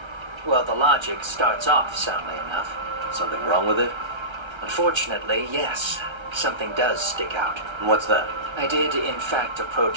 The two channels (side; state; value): left; late; 1.3 ms